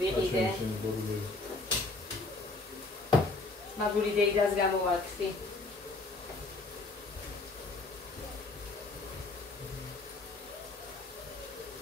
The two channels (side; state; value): right; quieter; 3.2 dB